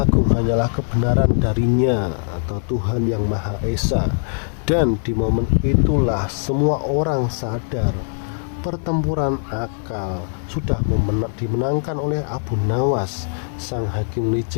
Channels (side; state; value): right; silent; digital silence